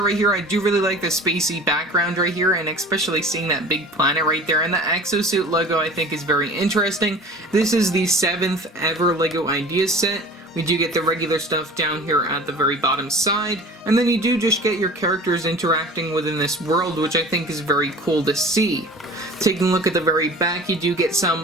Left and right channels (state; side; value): normal; both; correlation 0.41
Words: right here, I do really like the spacey background right here, and especially seeing that big planet right there, and the Exo Suit logo I think is very interesting. This is the 7th ever LEGO Ideas set. We do get the regular stuff down here at the very bottom side, and then you do just get your characters interacting within this world, which I think is very cool to see. Taking a look at the very back, you do get